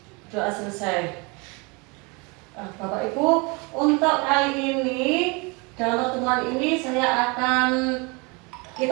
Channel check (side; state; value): left; quieter; 29.1 dB